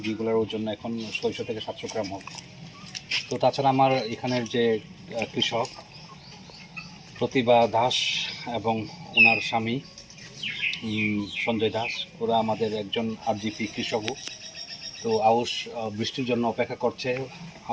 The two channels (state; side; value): identical; both; correlation 1.00